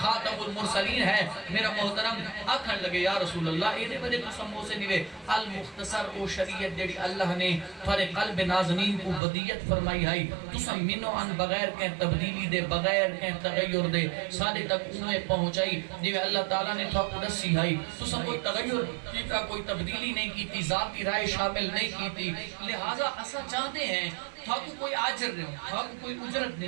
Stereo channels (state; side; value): drops out; left; at 9.2 s